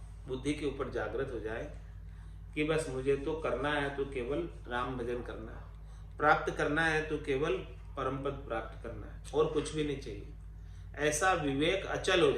बुद्धि के ऊपर जागृत हो जाए कि बस मुझे तो करना है तो केवल राम भजन करना है, प्राप्त करना है तो केवल परम पद प्राप्त करना है, और कुछ भी नहीं चाहिए। ऐसा विवेक अचल हो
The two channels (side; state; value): both; identical; correlation 1.00